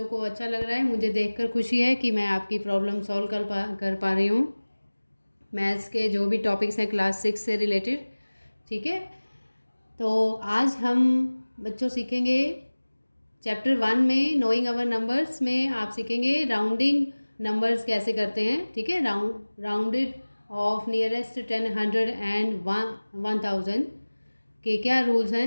को अच्छा लग रहा है, मुझे देखकर खुशी है कि मैं आपकी प्रॉब्लम सॉल्व कर पा रही हूँ मैथ्स के जो भी टॉपिक्स हैं क्लास 6 से रिलेटेड। ठीक है, तो आज हम बच्चों सीखेंगे चैप्टर 1 में नोइंग अवर नंबर्स में आप सीखेंगे राउंडिंग नंबर्स कैसे करते हैं। ठीक है, राउंडेड ऑफ नियरेस्ट 10, 100 एंड 1000 के क्या रूल्स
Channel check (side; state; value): both; inverted; correlation -1.00